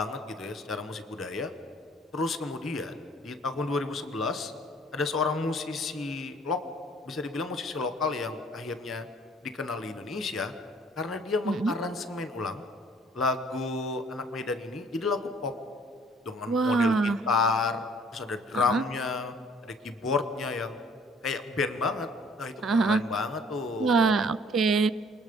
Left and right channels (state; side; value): normal; both; correlation 0.56